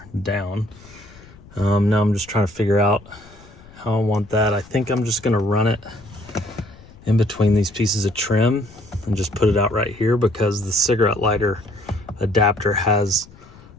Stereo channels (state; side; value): noise; left; rumble, 22 dB below the sound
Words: down. Now I'm just trying to figure out how I want that. I think I'm just gonna run it in between these pieces of trim and just put it out right here, because the cigarette lighter adapter has